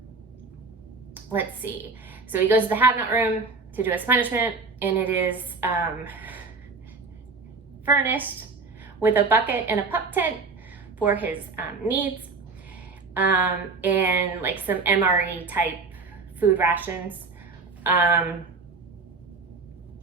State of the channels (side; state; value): left; quieter; 4.3 dB